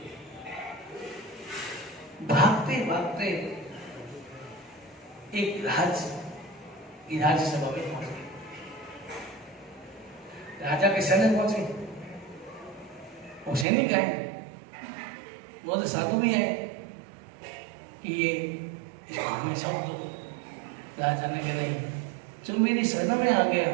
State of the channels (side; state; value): left; drops out; at 13.7 s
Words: भागते एक राज्यसभा में पहुंच गए। राजा के सैनिक पहुंचे, वो सैनिक आए, बहुत साधु भी आए कि ये इसको हमेशा दो। राजा ने कहा नहीं, जो मेरी शरण में आ गया